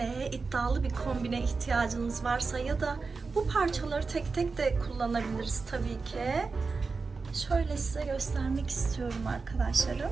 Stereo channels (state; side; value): quieter; left; 4.4 dB